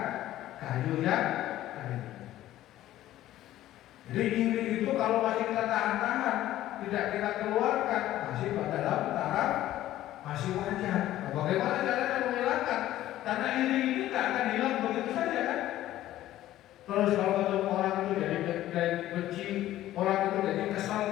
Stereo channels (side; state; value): right; quieter; 14.0 dB